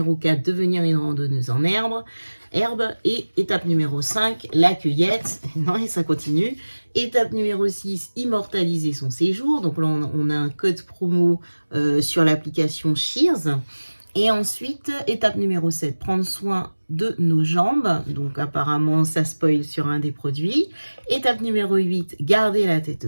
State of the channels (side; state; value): both; inverted; correlation -1.00